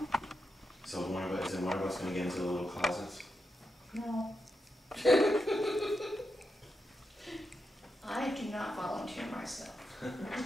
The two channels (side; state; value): both; normal; correlation 0.86